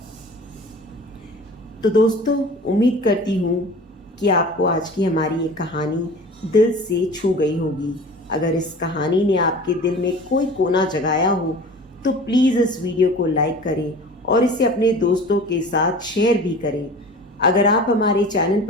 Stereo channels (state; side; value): normal; both; correlation 0.40